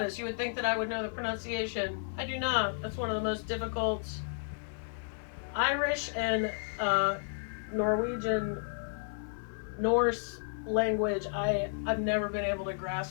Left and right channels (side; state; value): right; silent; 56 dB below the other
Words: You would think that I would know the pronunciation. I do not. That's one of the most difficult. Irish and Norwegian, Norse language. I've never been able to